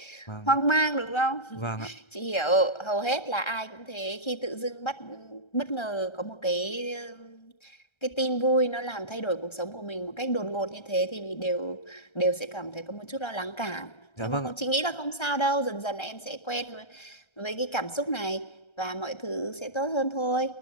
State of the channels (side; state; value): right; late; 1.3 ms